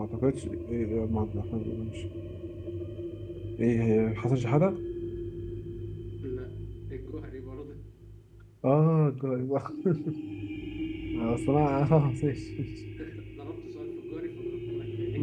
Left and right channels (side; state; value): both; identical; correlation 1.00